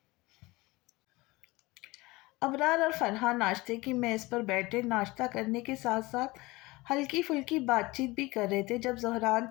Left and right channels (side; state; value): right; quieter; 21.9 dB